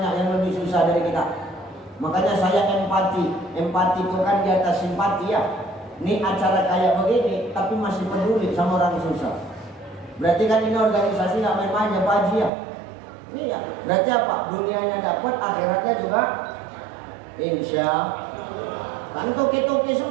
yang lebih susah dari kita. Makanya saya empati itu kan di atas simpati ya. Ini acara kayak begini, tapi masih peduli sama orang susah. Berarti kan ini organisasi nggak main-main ya Pak Haji ya. Iya. Berarti apa? Dunianya dapat, akhiratnya juga. Insya kan toki-toki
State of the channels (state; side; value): drops out; left; at 12.5 s